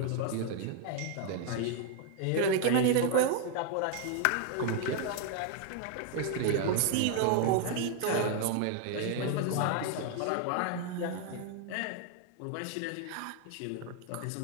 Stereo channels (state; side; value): different; both; correlation 0.00